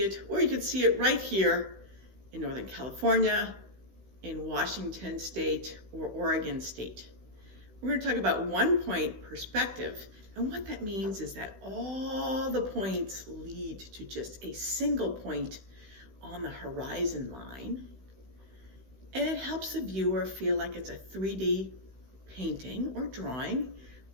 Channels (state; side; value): late; left; 16 ms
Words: it, or you can see it right here in Northern California, in Washington State, or Oregon State. We're going to talk about one-point perspective, and what that means is that all the points lead to just a single point on the horizon line, and it helps the viewer feel like it's a 3D painting or drawing